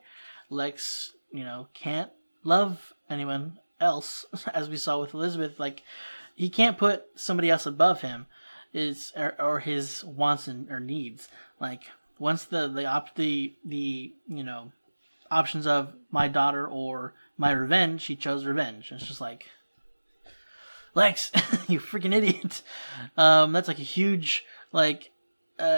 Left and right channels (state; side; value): inverted; both; correlation -1.00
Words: Lex, you know, can't love anyone else, as we saw with Elizabeth. Like, he can't put somebody else above him, or his wants or needs. Like, once the you know, options of my daughter or my revenge, he chose revenge. It's just like, Lex, you freaking idiot. That's like a huge like